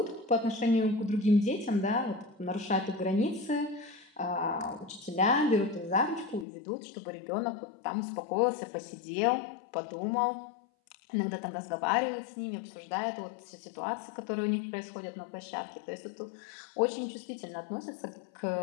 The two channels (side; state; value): right; drops out; at 6.5 s